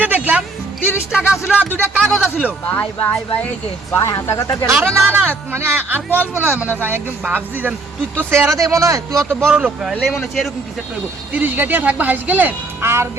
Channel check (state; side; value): quieter; left; 3.4 dB